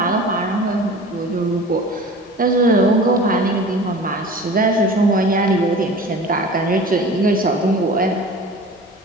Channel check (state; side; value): normal; both; correlation 0.39